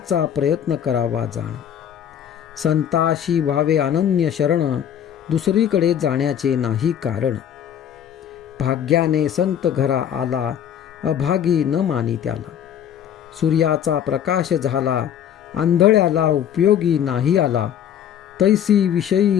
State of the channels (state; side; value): quieter; right; 9.5 dB